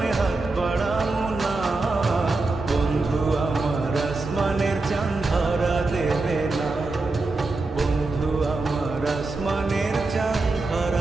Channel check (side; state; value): left; quieter; 3.4 dB